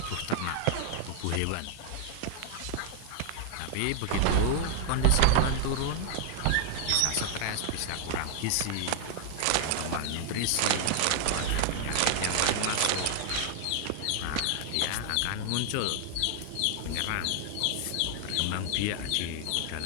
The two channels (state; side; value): different; both; correlation 0.00